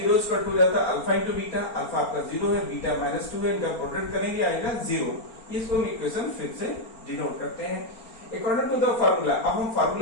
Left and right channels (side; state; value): right; late; 4.4 ms